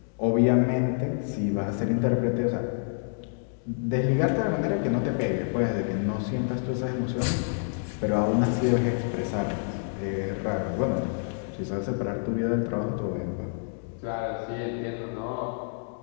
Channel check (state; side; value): silent; right; digital silence